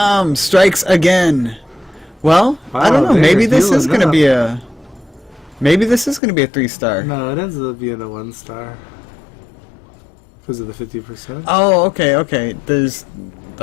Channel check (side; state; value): right; drops out; at 6.2 s